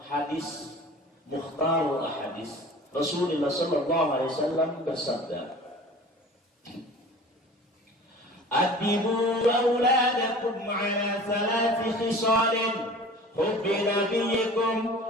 hadis Mukhtarul Hadis Rasulullah sallallahu alaihi wasallam bersabda, "Adibu auladakum ala 3 khisalin, hubbi nabiyyikum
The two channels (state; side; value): normal; both; correlation 0.42